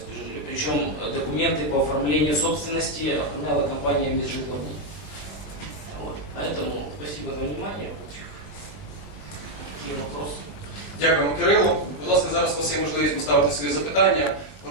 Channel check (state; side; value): late; right; 20 ms